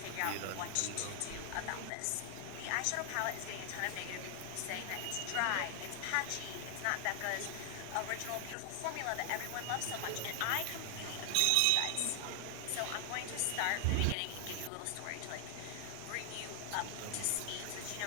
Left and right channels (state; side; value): different; both; correlation 0.00